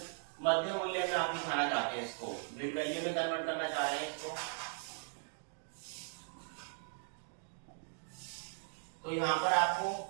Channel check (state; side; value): silent; left; 52 dB below the other